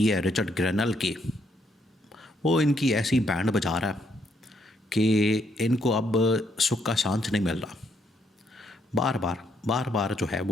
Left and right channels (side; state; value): both; normal; correlation 0.73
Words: है रिचर्ड ग्रेनल की, वो इनकी ऐसी बैंड बजा रहा है कि इनको अब सुख का सांस नहीं मिल रहा। बार बार जो है